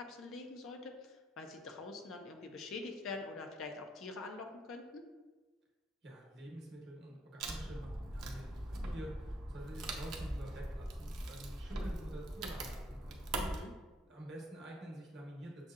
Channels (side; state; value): both; normal; correlation 0.71